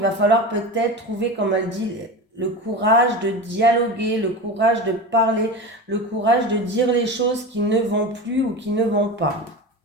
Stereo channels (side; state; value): both; normal; correlation 0.27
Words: va falloir peut-être trouver, comme elle dit, le courage de dialoguer, le courage de parler, le courage de dire les choses qui ne vont plus ou qui ne vont pas.